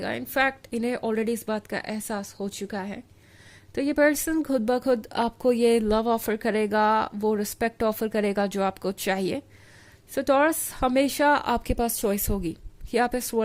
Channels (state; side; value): identical; both; correlation 1.00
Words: इनफैक्ट इन्हें ऑलरेडी इस बात का एहसास हो चुका है। तो ये पर्सन खुद ब खुद आपको ये लव ऑफर करेगा, वो रिस्पेक्ट ऑफर करेगा जो आपको चाहिए। सो टॉरस, हमेशा आपके पास चॉइस होगी कि आप इस